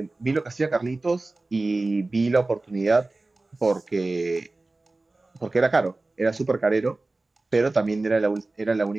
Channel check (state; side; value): quieter; left; 3.1 dB